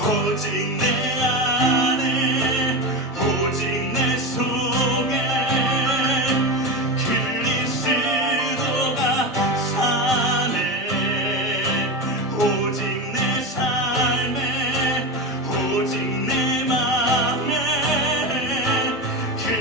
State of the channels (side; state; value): both; normal; correlation 0.20